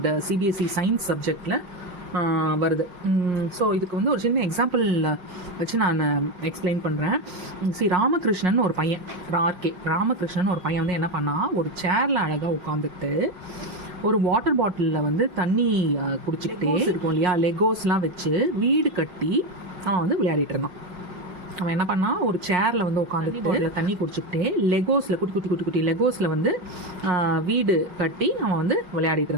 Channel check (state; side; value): late; left; 5.5 ms